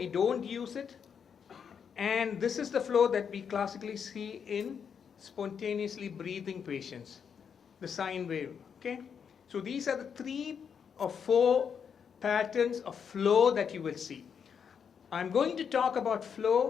don't use it. And this is the flow that we classically see in spontaneously breathing patients, the sine wave. Okay? So these are the 3 or 4 patterns of flow that you will see. I'm going to talk about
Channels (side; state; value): right; quieter; 7.1 dB